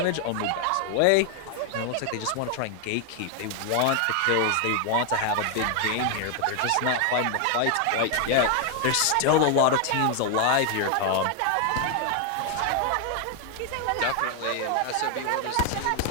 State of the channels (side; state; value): both; different; correlation 0.00